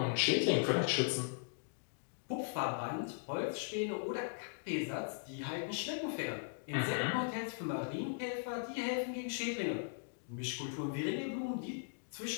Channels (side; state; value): right; silent; digital silence